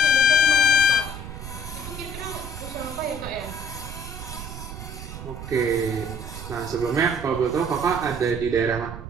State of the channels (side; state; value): right; noise; rumble, 10 dB below the sound